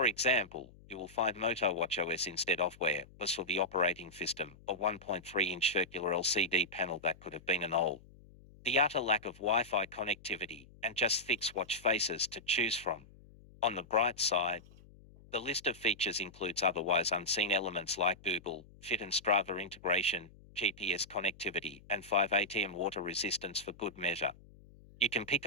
example, you will find Moto WatchOS instead of Wear OS for the operating system, a 1.3-inch circular LCD panel that could have been an OLED. The utter lack of Wi-Fi connectivity, and just 6 watch faces to choose from. On the bright side, the list of features includes otherwise unseen elements like Google Fit and Strava integration, GPS connectivity, and 5 ATM water resistance for good measure. You can pick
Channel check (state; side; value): noise; left; hum, 23 dB below the sound